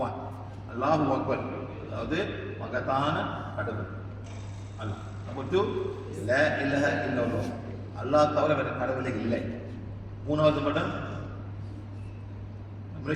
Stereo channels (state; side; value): identical; both; correlation 1.00